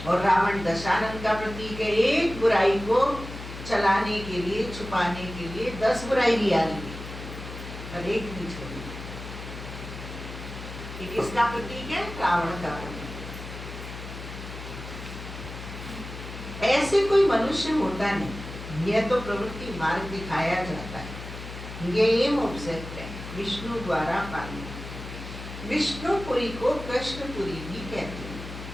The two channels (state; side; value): noise; left; hum, 11 dB below the sound